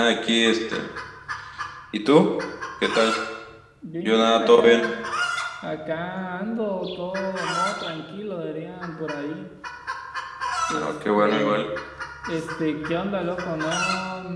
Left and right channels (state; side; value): identical; both; correlation 1.00